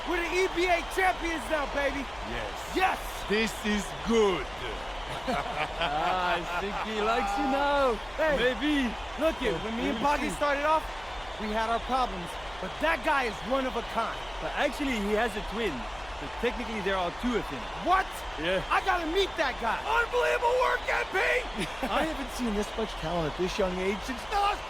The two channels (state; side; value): noise; left; hum, 23 dB below the sound